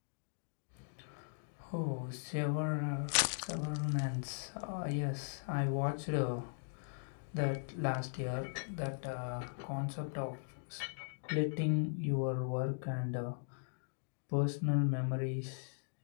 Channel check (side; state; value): right; silent; digital silence